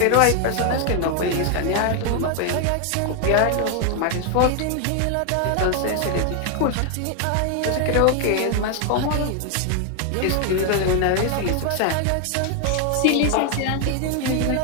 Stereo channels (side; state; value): both; different; correlation 0.01